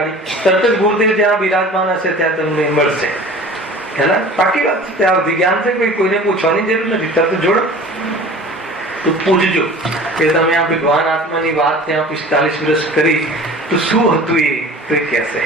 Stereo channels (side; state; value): both; normal; correlation 0.42